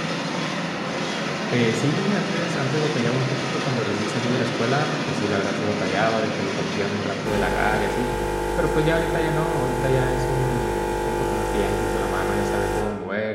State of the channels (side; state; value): both; identical; correlation 1.00